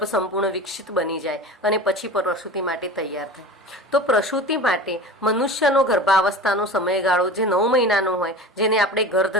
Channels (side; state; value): both; normal; correlation 0.34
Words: સંપૂર્ણ વિકસિત બની જાય અને પછી પ્રસૂતિ માટે તૈયાર થાય. તો પ્રસૂતિ માટે મનુષ્યનો ગર્ભાવસ્થાનો સમયગાળો જે 9 મહિનાનો હોય, જેને આપણે